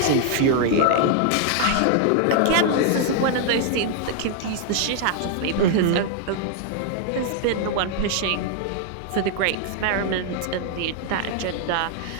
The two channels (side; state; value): both; different; correlation 0.00